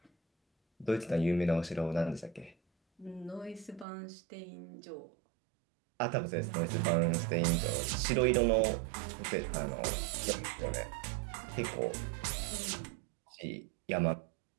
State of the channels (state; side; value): drops out; left; at 3.9 s